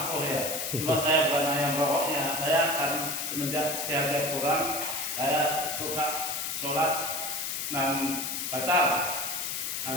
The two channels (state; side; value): noise; left; hiss, 2 dB below the sound